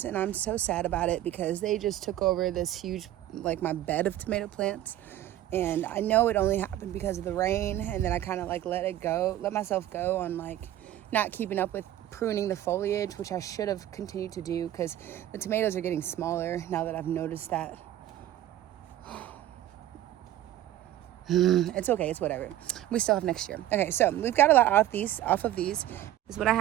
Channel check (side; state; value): left; quieter; 13.2 dB